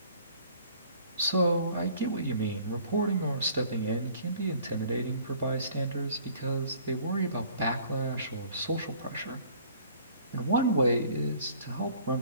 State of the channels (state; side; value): inverted; both; correlation -0.54